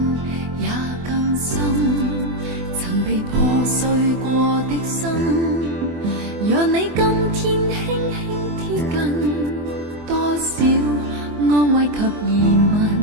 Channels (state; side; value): late; left; 24 ms